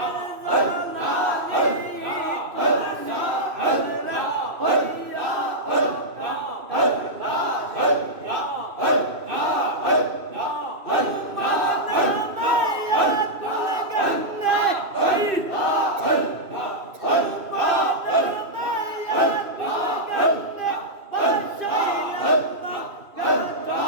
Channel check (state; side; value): late; left; 2.6 ms